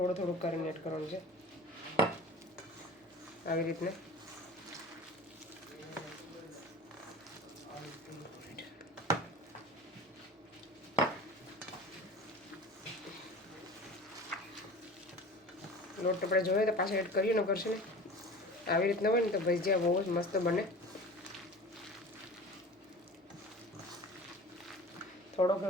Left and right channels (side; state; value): both; normal; correlation 0.37